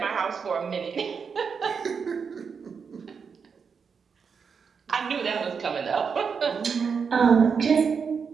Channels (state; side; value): quieter; left; 6.0 dB